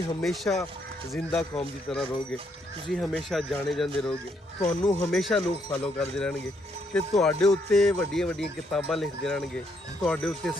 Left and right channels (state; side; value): normal; both; correlation 0.73